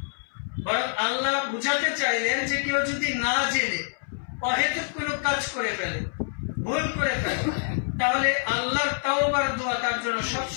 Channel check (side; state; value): right; silent; 60 dB below the other